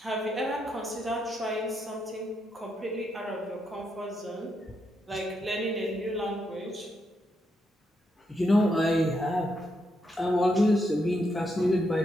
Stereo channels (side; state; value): both; normal; correlation 0.80